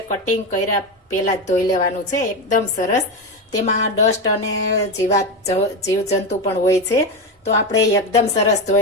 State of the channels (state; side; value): normal; both; correlation 0.15